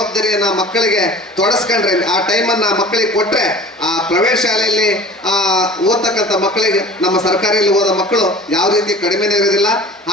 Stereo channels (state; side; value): normal; both; correlation 0.42